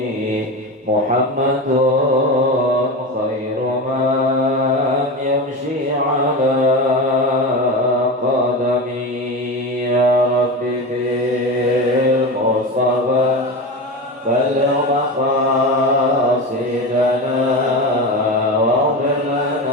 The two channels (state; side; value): normal; both; correlation 0.23